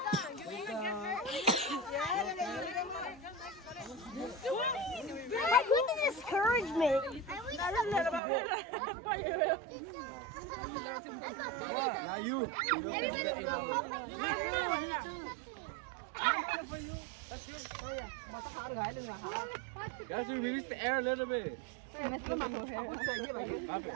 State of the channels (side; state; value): left; drops out; at 8.2 s